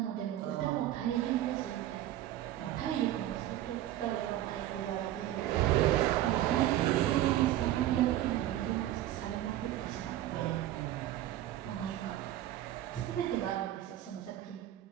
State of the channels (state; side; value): quieter; left; 13.4 dB